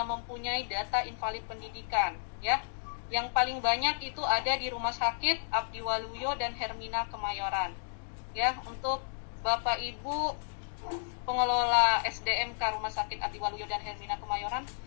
mempunyai data invalid pendidikan, ya. Yang paling banyak itu ada di Rumah Sakit Abdi Waluyo dan Hermina Kemayoran. Ya, untuk Bapak Ibu pengelola SDMK Rumah Sakit Abdi Waluyo dan Hermina Kemayoran,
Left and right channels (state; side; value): silent; right; digital silence